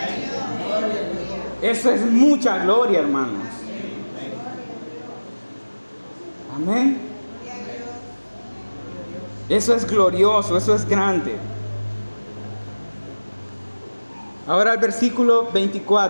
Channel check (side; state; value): both; inverted; correlation -1.00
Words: Eso es mucha gloria, hermanos. Amén. Eso es glorioso, eso es grande. Ahora el versículo